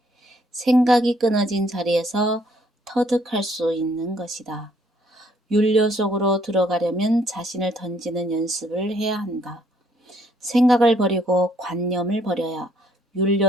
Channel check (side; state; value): both; normal; correlation 0.66